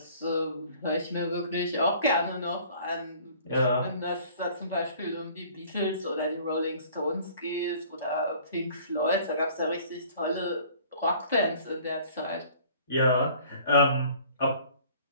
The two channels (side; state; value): both; inverted; correlation -0.52